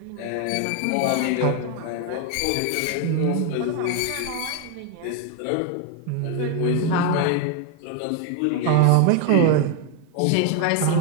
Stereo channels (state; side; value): different; both; correlation 0.01